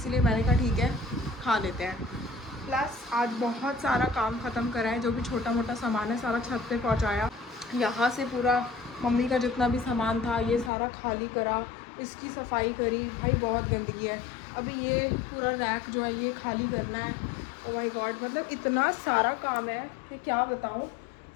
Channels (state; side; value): drops out; right; at 10.7 s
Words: मैंने कहा ठीक है खा लेते हैं। प्लस आज बहुत सारा काम ख़त्म करा है, जो भी छोटा मोटा सामान है सारा छत पे पहुंचाया। यहाँ से पूरा मम्मी का जितना भी सामान था ये सारा खाली करा, इसकी सफाई करी। भाई बहुत गंदगी है। अभी ये पूरा रैक जो है ये खाली करना है। ओ माय गॉड, मतलब इतना सारा काम है कि क्या बताऊँ।